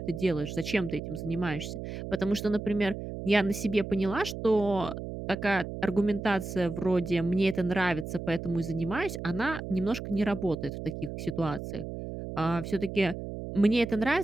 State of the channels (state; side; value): noise; right; hum, 7 dB below the sound